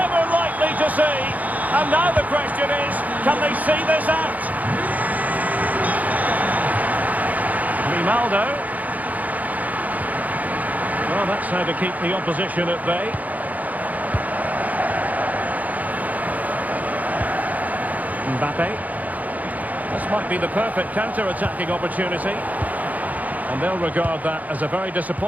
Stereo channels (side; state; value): left; late; 0.077 ms